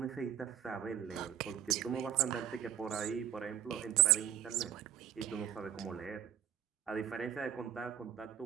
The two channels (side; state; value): left; quieter; 9.8 dB